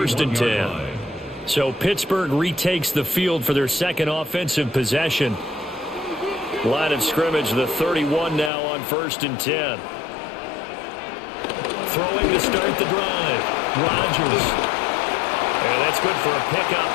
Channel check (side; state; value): right; drops out; at 8.5 s